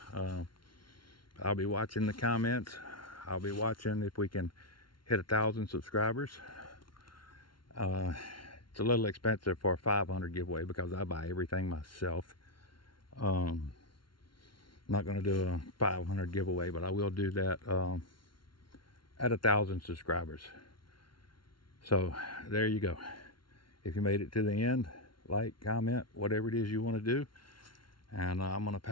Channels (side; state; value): right; late; 0.73 ms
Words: I'll be watching the comments. I'll be watching if we can hit 1,000 subscribers. It's a little expensive for a 500 giveaway because I buy everything myself. I'm not going to do a 500 giveaway, but I will do that at 1,000 subscribers. So there you go. If you made it to the end, like, comment, whatever it is you want to do. And I'm going to